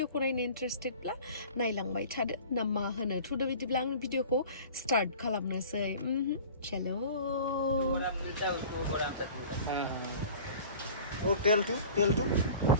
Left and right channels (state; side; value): inverted; both; correlation -0.43